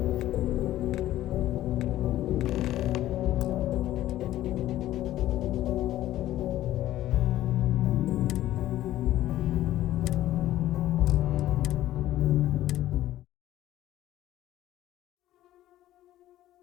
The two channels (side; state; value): right; quieter; 14.0 dB